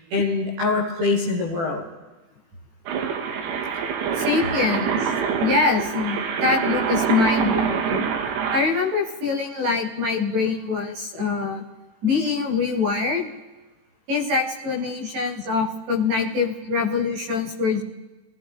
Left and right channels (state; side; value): late; left; 18 ms